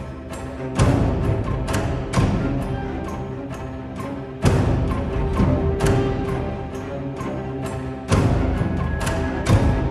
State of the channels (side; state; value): both; identical; correlation 1.00